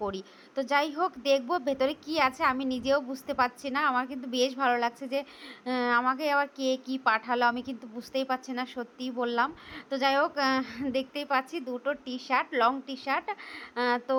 করি। তো যাই হোক, দেখবো ভেতরে কি আছে, আমি নিজেও বুঝতে পারছি না। আমার কিন্তু বেশ ভালো লাগছে যে আমাকে আবার কে কি পাঠালো, আমি কিন্তু বুঝতেই পারছি না, সত্যিই বললাম। তো যাই হোক, দেখতেই পাচ্ছি দুটো T shirt, long T shirt. তো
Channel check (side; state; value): both; identical; correlation 1.00